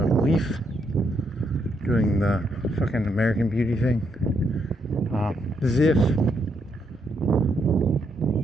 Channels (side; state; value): both; normal; correlation 0.77